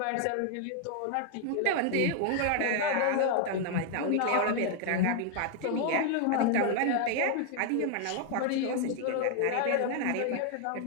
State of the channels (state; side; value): different; both; correlation 0.00